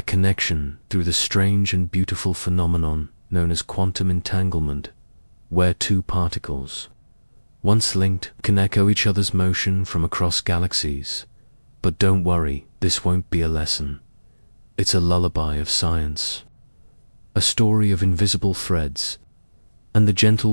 connection through the strange and beautiful phenomenon known as quantum entanglement, where two particles, once linked, can echo each other's motion from across galaxies. But don't worry, this won't be a lesson. It's a lullaby of science, a story of invisible threads, and the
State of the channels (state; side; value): inverted; both; correlation -1.00